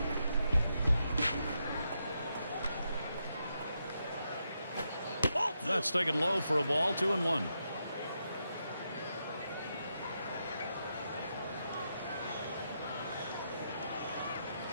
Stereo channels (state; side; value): inverted; both; correlation -0.83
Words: That's taken low for a ball. 2-1.